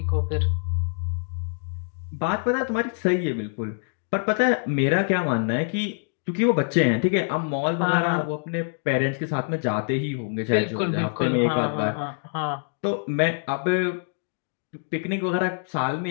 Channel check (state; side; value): silent; right; digital silence